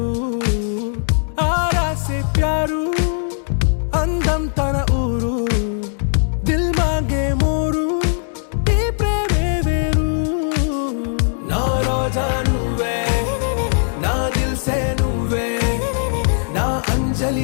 ఆరా సే ప్యారు అందం తన ఊరు దిల్సే నువ్వే నా అంజలి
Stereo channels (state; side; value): silent; right; 66 dB below the other